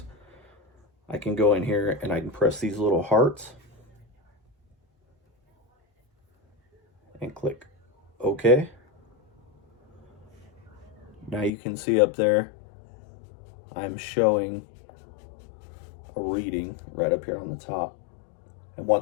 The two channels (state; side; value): drops out; right; at 11.5 s